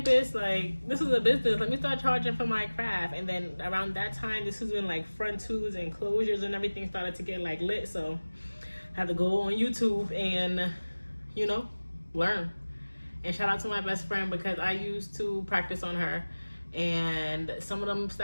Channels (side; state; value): both; inverted; correlation -1.00